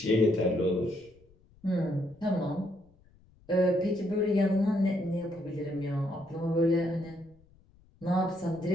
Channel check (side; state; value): left; noise; rumble, 29 dB below the sound